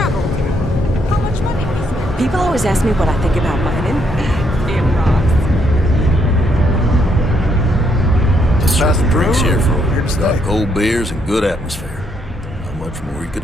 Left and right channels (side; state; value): both; normal; correlation 0.74